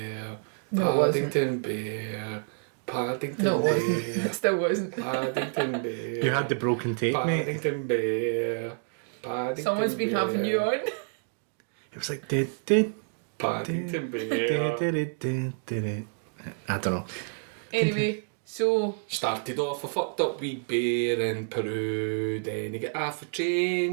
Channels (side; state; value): left; silent; 59 dB below the other